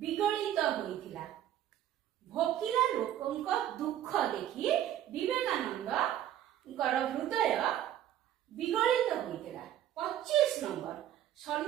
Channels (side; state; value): left; quieter; 11.6 dB